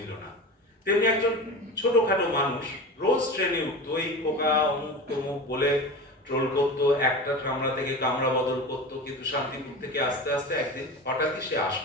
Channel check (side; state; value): both; normal; correlation 0.30